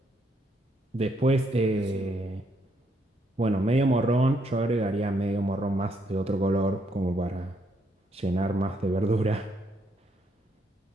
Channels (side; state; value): both; normal; correlation 0.73